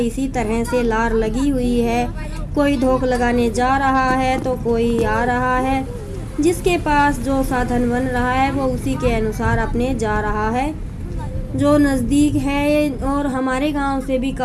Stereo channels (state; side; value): identical; both; correlation 1.00